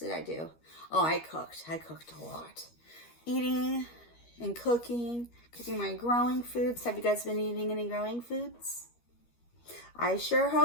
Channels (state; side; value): late; right; 13 ms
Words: I do? Oh, I cooked. I cooked a lot. Eating and cooking my growing foods. Have you guys been eating any growing foods? I sure